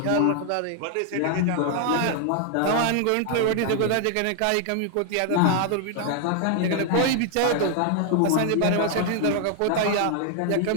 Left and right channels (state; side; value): different; both; correlation 0.00